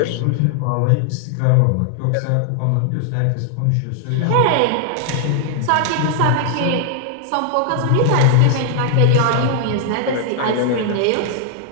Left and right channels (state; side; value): different; both; correlation 0.00